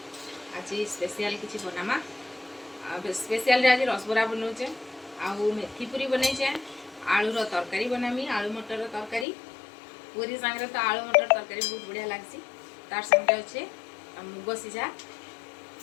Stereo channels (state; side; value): drops out; right; at 9.2 s